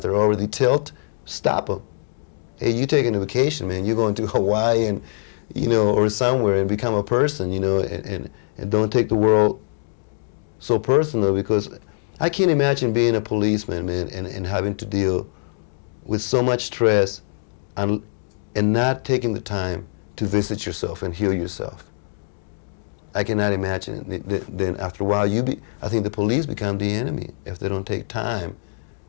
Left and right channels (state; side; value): silent; right; digital silence